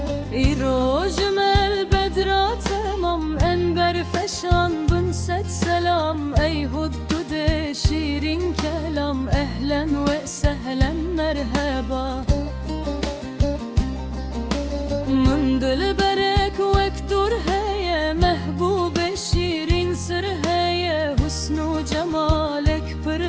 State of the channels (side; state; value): both; identical; correlation 1.00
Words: İrojmel bedra temam enber feşan bin set selam Ey huddude şirin kelam ehlen ve sehlen merhaba Min dil berek vektur heye mehbube şirin sır heye Husnu cemalek pır